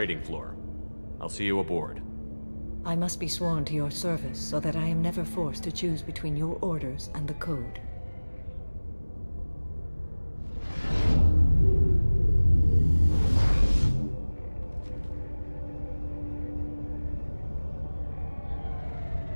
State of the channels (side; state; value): both; inverted; correlation -1.00